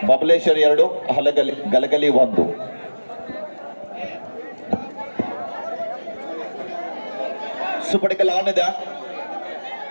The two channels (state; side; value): inverted; both; correlation -1.00